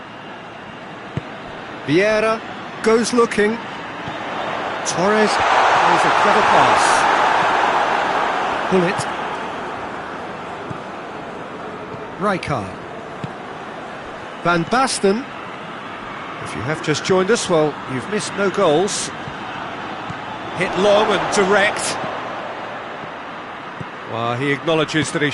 Vieira goes looking. Torres plays a clever pass. Bullet. Rijkaard. Van Basten. If you have just joined us, well, you've missed no goals. Hit long and direct. Well, he acknowledges that he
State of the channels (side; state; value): both; identical; correlation 1.00